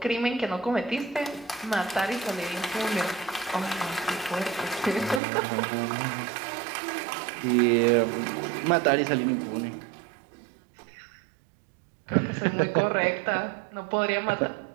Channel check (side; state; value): left; drops out; at 5.2 s